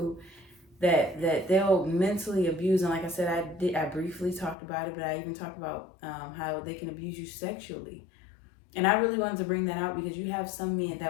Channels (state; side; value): drops out; right; at 4.5 s